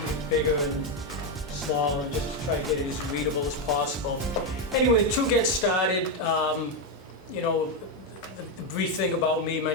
bigger and smaller and just to try to get it as readable as possible. Anyway, to get started, the brief thing about me, my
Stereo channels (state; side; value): normal; both; correlation 0.06